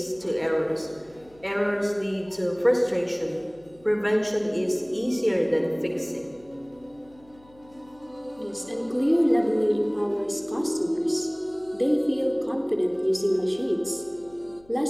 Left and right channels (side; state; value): left; noise; hum, 27 dB below the sound